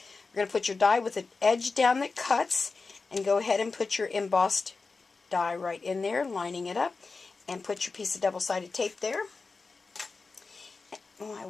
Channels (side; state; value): right; quieter; 4.2 dB